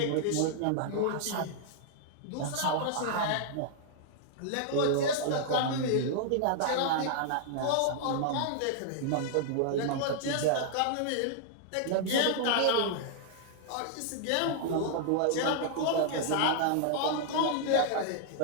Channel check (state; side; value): different; both; correlation -0.01